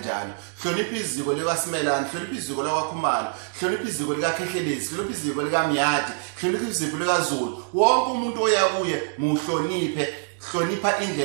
Hlonipha iziko likaSimelane, hlonipha iziko lakwaKhumalo, hlonipha iziko likaKhehlelezi, hlonipha iziko likaMyati, hlonipha iziko likaZulu. Wonke umuntu oya kuye muhloniphe, hlonipha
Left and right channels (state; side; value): silent; left; digital silence